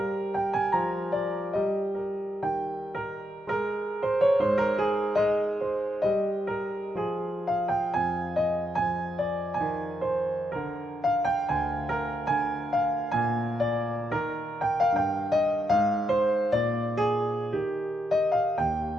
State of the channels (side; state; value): both; normal; correlation 0.82